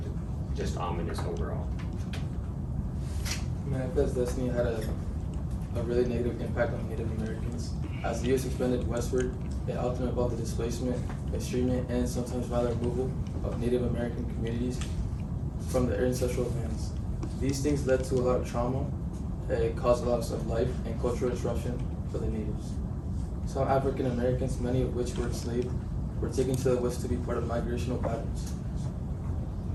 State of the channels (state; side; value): identical; both; correlation 1.00